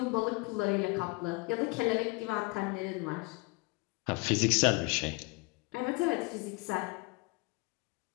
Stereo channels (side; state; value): right; quieter; 26.5 dB